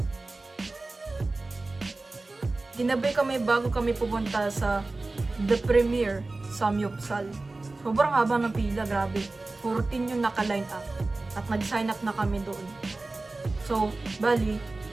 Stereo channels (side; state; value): left; quieter; 3.2 dB